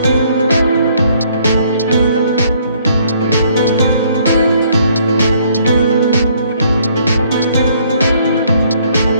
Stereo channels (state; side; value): inverted; both; correlation -0.65